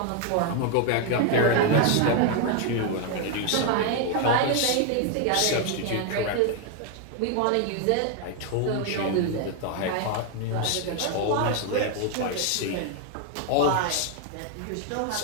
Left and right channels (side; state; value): both; different; correlation 0.01